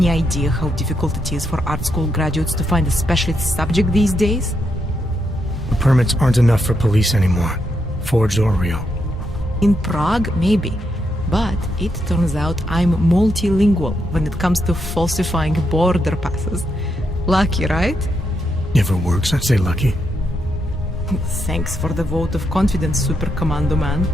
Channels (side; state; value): both; normal; correlation 0.81